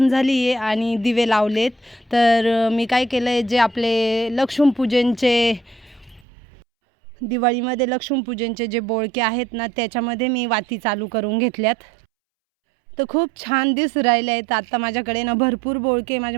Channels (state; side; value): drops out; left; at 6.2 s